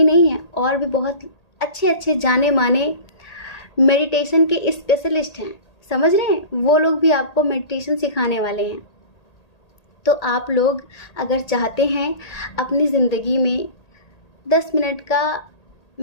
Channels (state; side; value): late; right; 1.8 ms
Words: नहीं हैं, और भी बहुत अच्छे अच्छे जाने माने मेडिटेशन के स्पेशलिस्ट हैं। समझ रहे हैं? वो लोग भी आपको मेडिटेशन सिखाने वाले हैं। तो आप लोग अगर चाहते हैं अपनी ज़िंदगी में 10 मिनट का